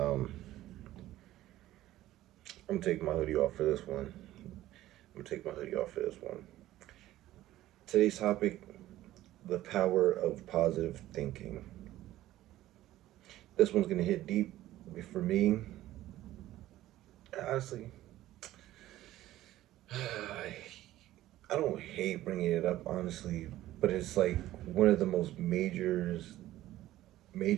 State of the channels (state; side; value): quieter; left; 14.9 dB